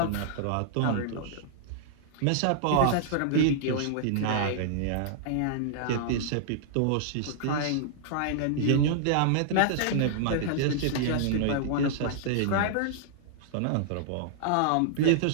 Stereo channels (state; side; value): different; both; correlation -0.01